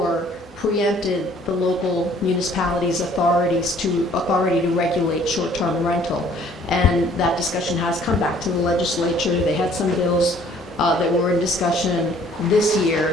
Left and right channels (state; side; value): normal; both; correlation 0.57